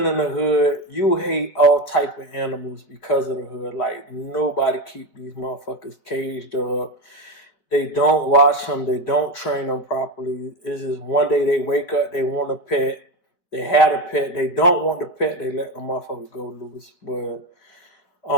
in the hood, you hate all type of animals because of the hood. Like, nobody keep these motherfuckers caged up. They don't watch them. They don't train them properly. It's just one day they wake up, they want a pet. They had a pet. They don't want the pet. They let the motherfucker go loose. But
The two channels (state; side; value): late; right; 4.6 ms